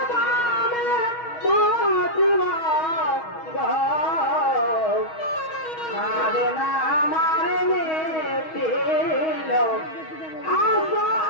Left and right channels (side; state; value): right; late; 6.3 ms